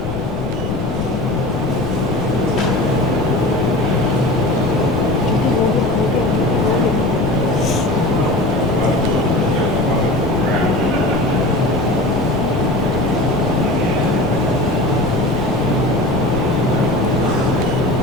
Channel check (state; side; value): noise; left; rumble, 9 dB below the sound